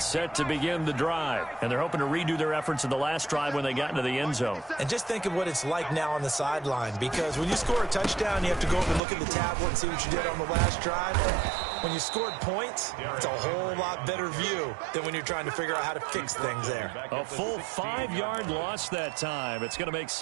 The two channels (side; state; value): left; drops out; at 9.0 s